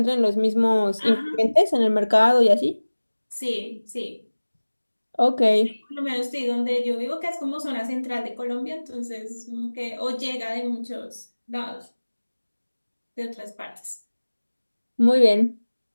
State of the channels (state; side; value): inverted; both; correlation -1.00